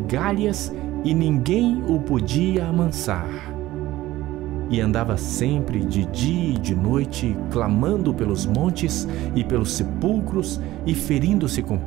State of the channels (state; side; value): quieter; left; 16.2 dB